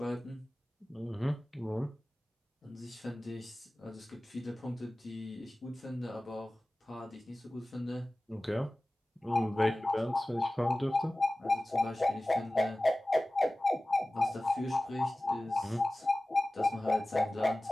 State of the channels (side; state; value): both; normal; correlation 0.97